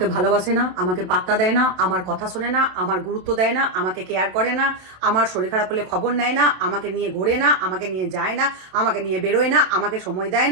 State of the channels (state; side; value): late; left; 27 ms